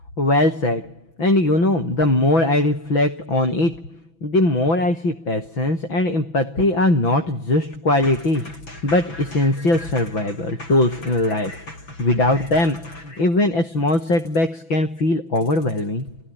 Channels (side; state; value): right; late; 6.0 ms